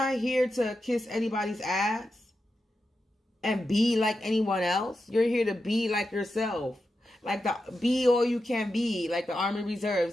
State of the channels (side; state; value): both; normal; correlation 0.89